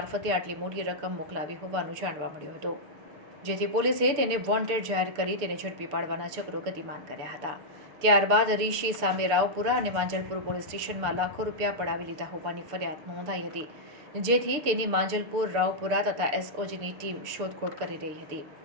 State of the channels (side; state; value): left; late; 6.8 ms